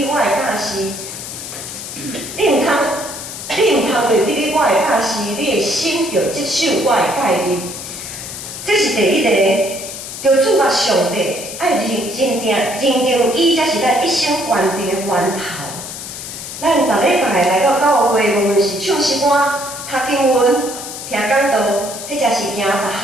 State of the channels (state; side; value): noise; left; hiss, 9 dB below the sound